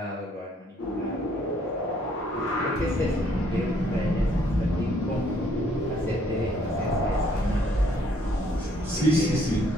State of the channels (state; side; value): normal; both; correlation 0.65